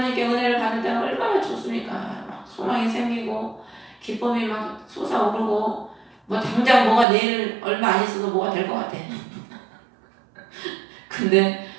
은혜를 받을 때는 얼마나 좋습니까? 막 소망이 생기고 기쁨이 막 솟아오르고 뭐 당장 뭐가 내일 얼마 안 있어도 뭐가 될 것 같아. 근데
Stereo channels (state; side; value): drops out; left; at 7.1 s